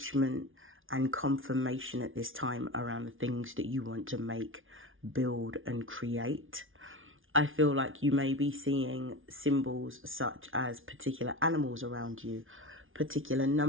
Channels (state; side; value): late; left; 0.58 ms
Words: and confirmation at this time around the things that you want to make, build, and create. I feel like you may be seeing symbols such as particular animals around you, particular